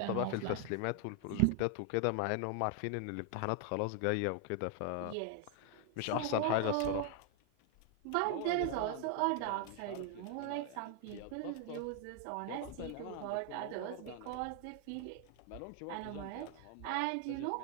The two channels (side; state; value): both; different; correlation 0.00